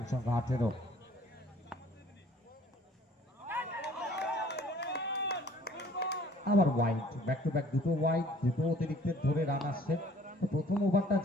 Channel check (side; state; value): both; normal; correlation 0.55